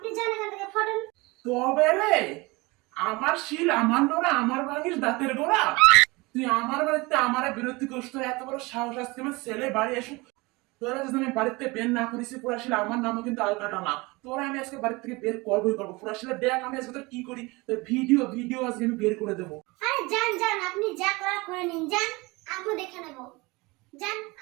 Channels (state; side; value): quieter; left; 24.1 dB